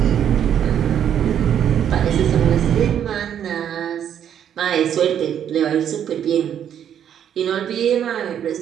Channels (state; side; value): quieter; left; 9.4 dB